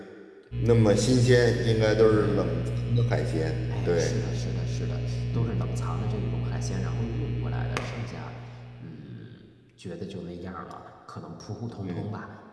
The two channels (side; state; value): both; identical; correlation 1.00